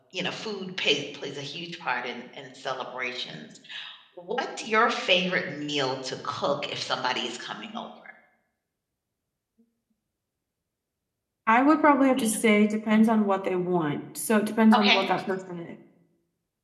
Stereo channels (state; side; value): identical; both; correlation 1.00